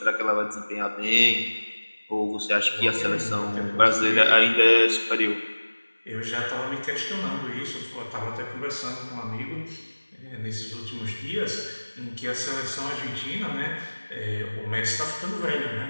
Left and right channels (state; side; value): inverted; both; correlation -1.00